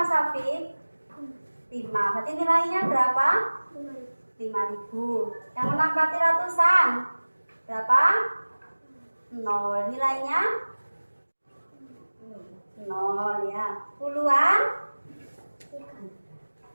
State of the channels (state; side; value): inverted; both; correlation -1.00